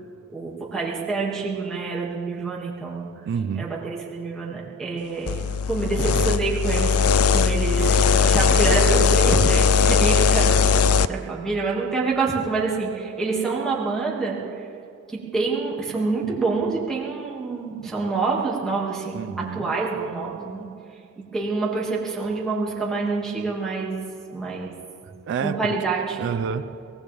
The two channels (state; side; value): normal; both; correlation 0.37